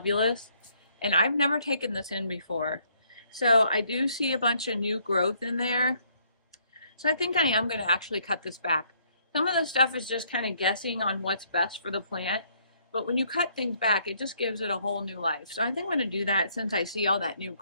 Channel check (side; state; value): both; inverted; correlation -0.67